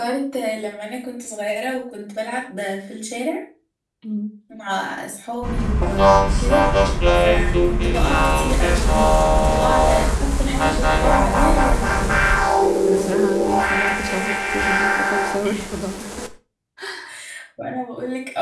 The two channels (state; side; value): identical; both; correlation 1.00